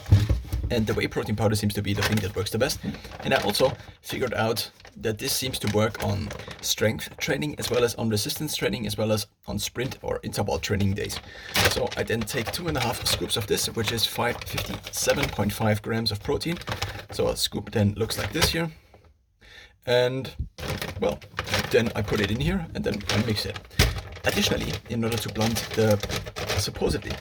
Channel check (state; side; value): identical; both; correlation 1.00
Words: And the whey protein powder seems to be the thing that works the best. And I also figured out that this seems to work on strength training, as well as on resistance training, as well as on sprint or interval training days. So I then take 2.5 scoops of this, which is 57.5 grams of protein. So a scoop then looks like this here. And well, then I put it in here, and then I mix it. Additionally, in order to supposedly